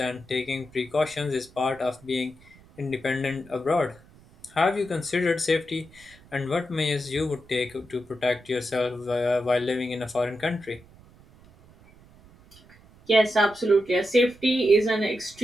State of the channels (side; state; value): right; noise; rumble, 25 dB below the sound